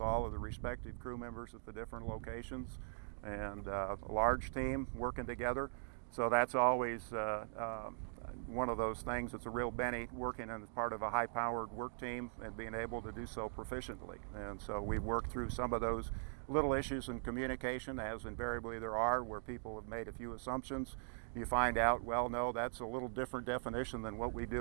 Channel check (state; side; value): silent; left; digital silence